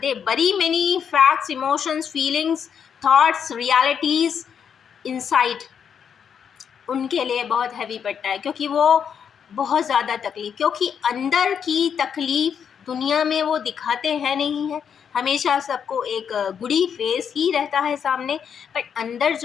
बरी many facts, emotions, feelings, thoughts, realities inside, उनके लिए बहुत हैवी पड़ता है, क्योंकि वो बहुत ज़्यादा तकलीफ़, क्योंकि अंदर की तकलीफ़ दुनिया में वो दिखाते हैं नहीं है, हमेशा सबको एक गुडी फेस ही रहता है सामने, बट अंदर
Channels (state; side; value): quieter; right; 7.5 dB